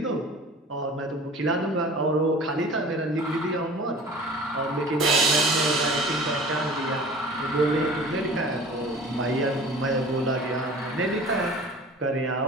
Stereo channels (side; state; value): both; normal; correlation 0.43